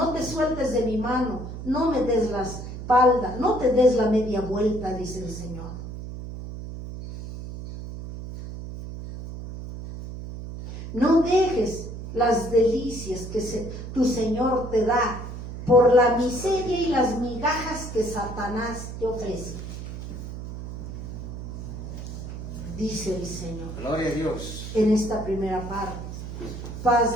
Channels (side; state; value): right; noise; hum, 9 dB below the sound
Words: te sueltes de mi mano, no me des la espalda, no te des la media vuelta, dice el Señor. No dejes las delicias que tu Señor te da por la miseria y las migajas que Satanás te ofrece. Dice el Señor Gloria a Dios. en esta primera parte.